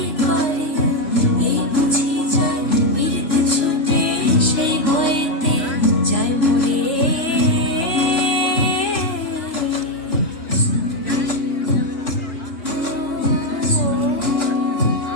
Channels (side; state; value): right; late; 3.6 ms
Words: করে এই বুঝি যায় বিরত ছুটে, সেই ভয়েতে যায় মরে।